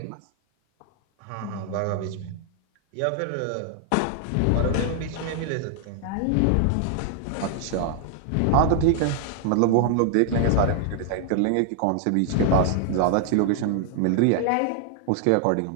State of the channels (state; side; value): different; both; correlation -0.01